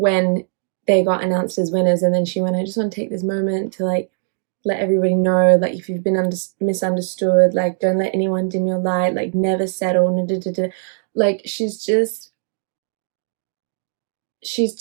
they got announced as winners, and then she went, I just want to take this moment to like let everybody know, like, if you've been misunderstood, like, don't let anyone dim your light, like, never settle. Like, she's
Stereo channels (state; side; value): silent; left; digital silence